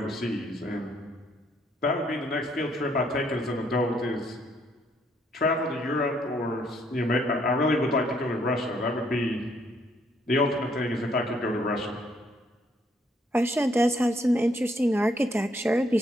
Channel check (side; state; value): both; normal; correlation 0.69